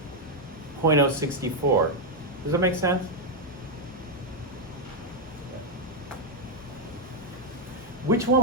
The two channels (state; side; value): normal; both; correlation 0.00